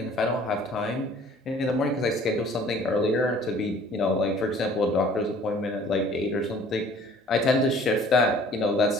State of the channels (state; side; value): normal; both; correlation 0.52